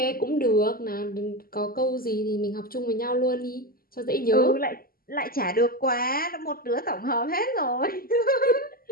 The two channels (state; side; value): late; right; 0.42 ms